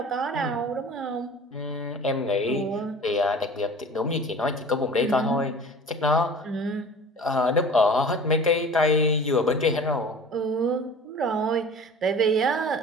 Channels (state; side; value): normal; both; correlation 0.41